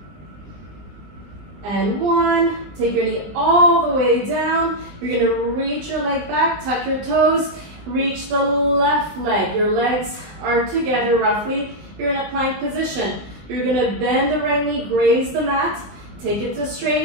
and 1. Take your knee all the way down. You're going to reach your leg back, tuck your toes, reach the left leg. Your legs are together roughly. You're in a plank position. You're going to bend the right knee, graze the mat, take it to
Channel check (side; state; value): left; late; 19 ms